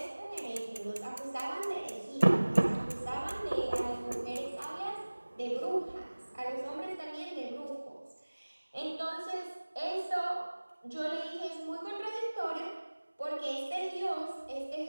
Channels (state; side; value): inverted; both; correlation -1.00